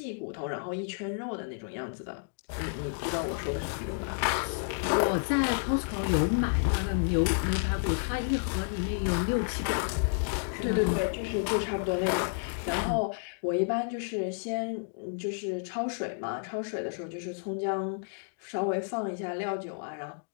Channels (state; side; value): silent; right; digital silence